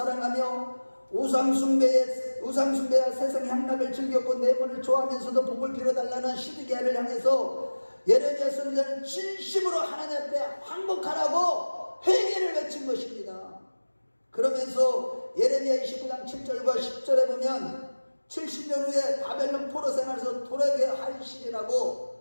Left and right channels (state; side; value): inverted; both; correlation -1.00